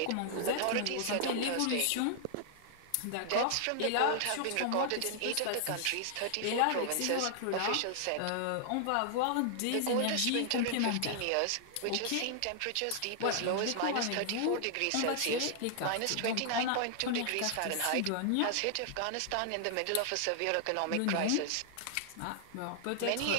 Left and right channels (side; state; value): both; different; correlation 0.00